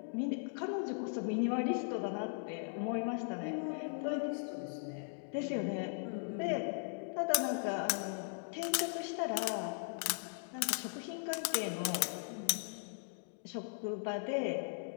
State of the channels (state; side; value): silent; right; digital silence